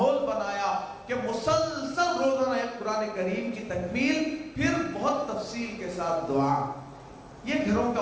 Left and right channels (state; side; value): identical; both; correlation 1.00